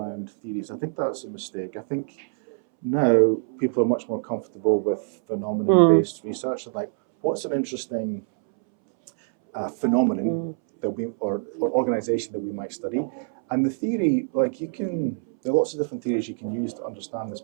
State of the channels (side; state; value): left; silent; 62 dB below the other